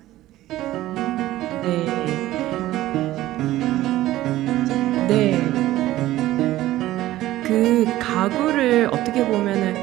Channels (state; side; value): quieter; left; 15.4 dB